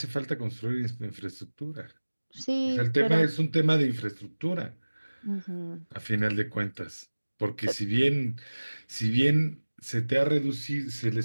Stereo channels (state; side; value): inverted; both; correlation -1.00